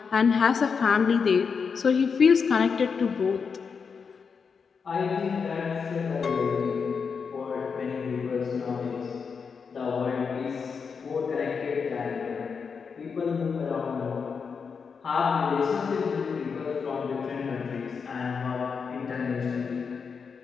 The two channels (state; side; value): quieter; right; 5.8 dB